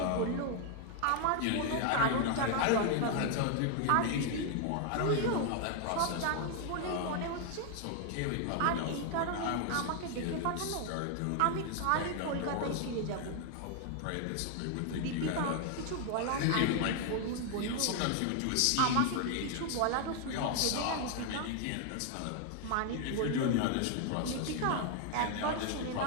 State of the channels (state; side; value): different; both; correlation 0.00